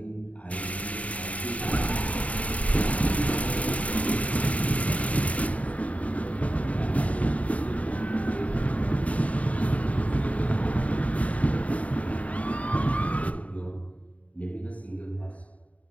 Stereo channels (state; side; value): late; right; 0.068 ms